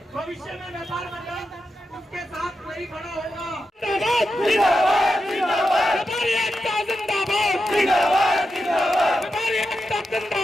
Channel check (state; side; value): normal; both; correlation 0.89